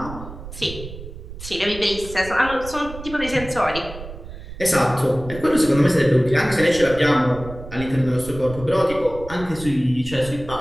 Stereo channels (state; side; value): noise; right; rumble, 13 dB below the sound